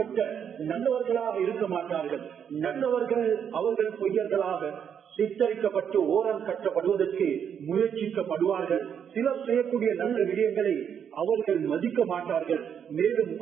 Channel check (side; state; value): left; quieter; 8.1 dB